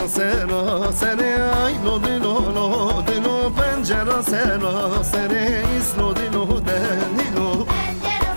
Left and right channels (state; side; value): inverted; both; correlation -1.00